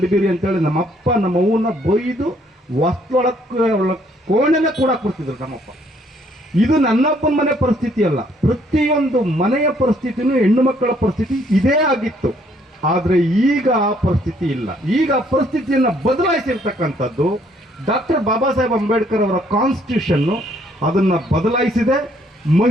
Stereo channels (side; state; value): both; normal; correlation 0.66